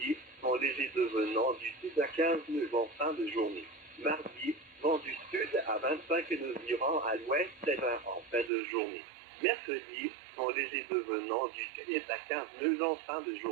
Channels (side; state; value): left; drops out; at 8.5 s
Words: vent léger devenant du sud à 15 nœuds en fin de journée. Mardi, vent du sud à 25 nœuds virant à l'ouest et 20 en fin de journée. Mercredi, vent léger devenant du sud est à 15 nœuds en fin de